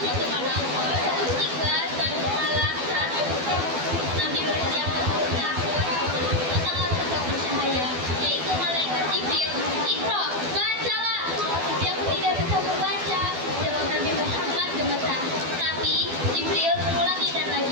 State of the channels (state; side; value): late; left; 12 ms